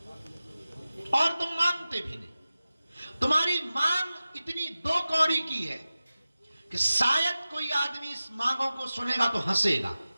और तुम मांगते भी नहीं। तुम्हारी मांग इतनी दो कौड़ी की है कि शायद कोई आदमी इस मांगों को सुनेगा तो हंसेगा,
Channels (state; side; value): inverted; both; correlation -0.96